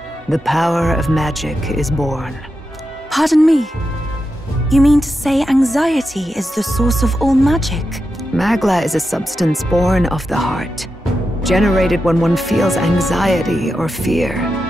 the power of magic is born. Pardon me. You mean to say anxiety is the source of all magic? Magla is a substance born of the heart, generated when one feels anxiety or fear.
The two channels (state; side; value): normal; both; correlation 0.88